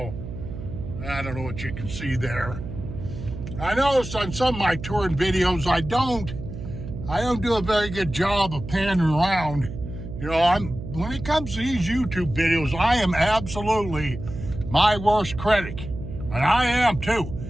I don't know what you can see there. I noticed on some of my touring videos, I don't do a very good job of panning around. When it comes to these YouTube videos, I am absolutely my worst critic. And I am too.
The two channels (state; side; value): noise; right; hum, 9 dB below the sound